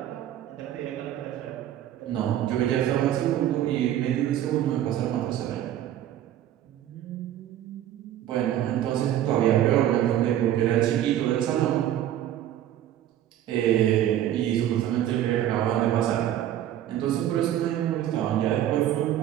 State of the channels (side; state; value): left; quieter; 11.9 dB